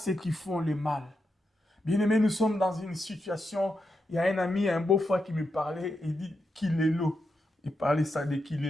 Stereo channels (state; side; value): normal; both; correlation 0.85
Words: qui font le mal. Bien-aimé, nous sommes dans une situation, il y a un ami, un beau-frère qui me parlait, il dit qu'il est l'eau. Il parlait ça de qu'il